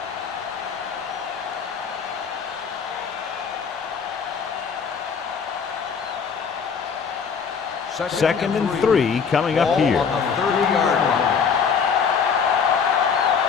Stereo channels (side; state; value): right; quieter; 6.2 dB